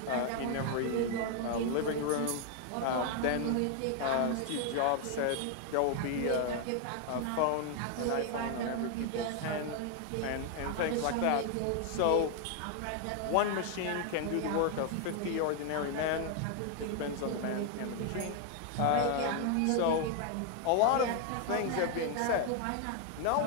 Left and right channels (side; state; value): both; different; correlation 0.01